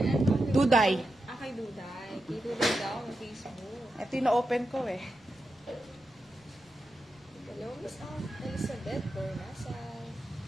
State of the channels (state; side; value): noise; left; rumble, 30 dB below the sound